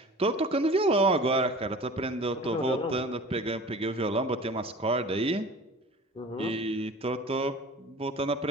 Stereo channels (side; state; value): both; normal; correlation 0.41